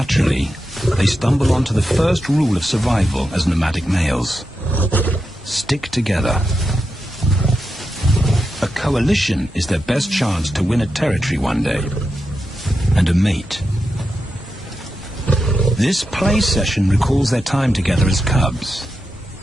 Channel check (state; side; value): normal; both; correlation 0.88